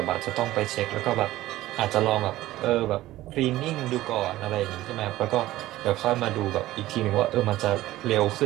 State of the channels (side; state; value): left; quieter; 15.9 dB